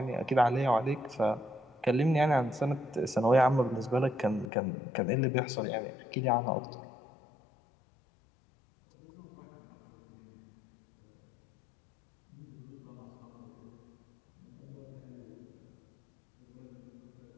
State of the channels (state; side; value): drops out; right; at 4.5 s